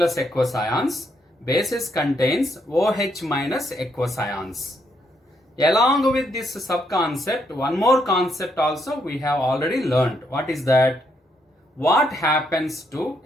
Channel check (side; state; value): both; normal; correlation 0.75